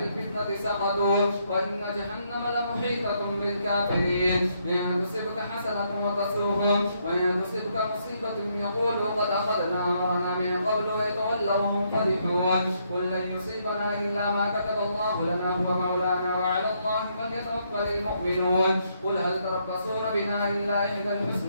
سقطوا وإن جهنم لمحيطة بالكافرين. إن تصبك حسنة وتسوهم وإن تصبك مصيبة يقولوا قد أخذنا أمرنا من قبل ويتولوا وهم فرحون. قل لن يصيبنا إلا ما كتب الله لنا هو مولانا وعلى الله فليتوكل المؤمنون. قل هل تربصون بنا إلا إحدى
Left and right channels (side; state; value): both; inverted; correlation -0.74